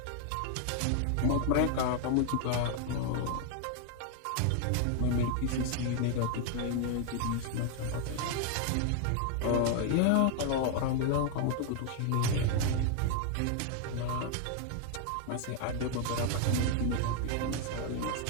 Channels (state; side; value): different; both; correlation 0.00